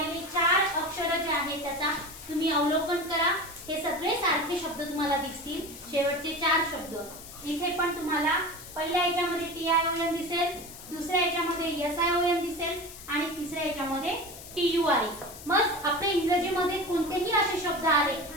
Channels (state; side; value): noise; left; hiss, 15 dB below the sound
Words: 4 अक्षर जे आहेत त्याचा तुम्ही अवलोकन करा। हे सगळे सारखे शब्द तुम्हाला दिसतील, शेवटचे 4 शब्द। इथे पण तुम्हाला पहिल्या याच्यामध्ये TION दिसेल, दुसऱ्या याच्यामध्ये SION दिसेल आणि तिसऱ्या याच्यामध्ये TURE। मग आपल्या इंग्रजीमध्ये कोणतेही असे शब्द आले